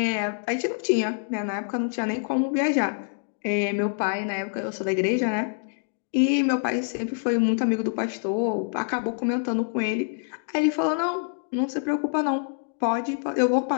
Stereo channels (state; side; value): silent; right; digital silence